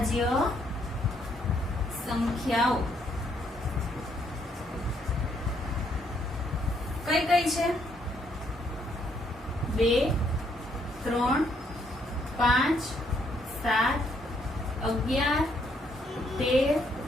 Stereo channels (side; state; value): both; normal; correlation 0.71